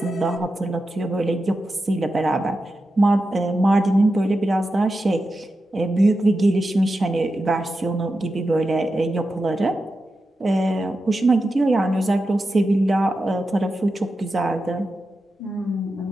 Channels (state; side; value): normal; both; correlation 0.90